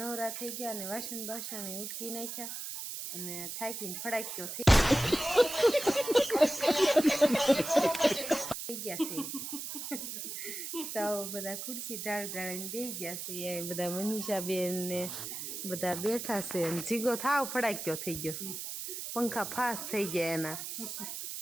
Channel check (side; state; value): right; noise; hiss, 6 dB below the sound